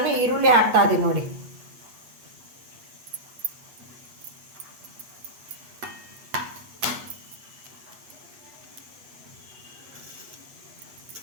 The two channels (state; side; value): late; left; 8.2 ms